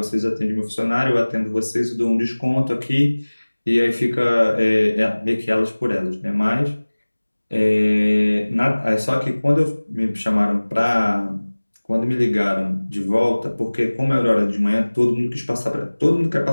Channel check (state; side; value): inverted; both; correlation -1.00